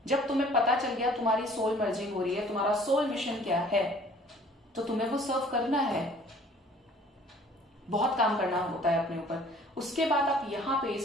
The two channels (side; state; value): both; normal; correlation 0.53